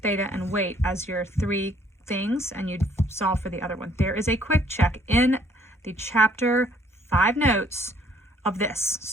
theta, and weight as your three things, and you'd solve for the other one. There is a quick check in the chapter 5 notes of this.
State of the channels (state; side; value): normal; both; correlation 0.62